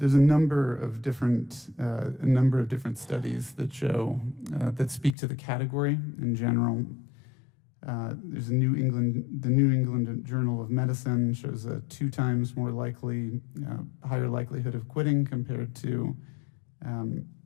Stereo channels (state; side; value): drops out; right; at 5.2 s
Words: a number of different studies that show that speak to the category in general. There's the New England Journal of Medicine shows a 2 times more higher likelihood of quitting compared to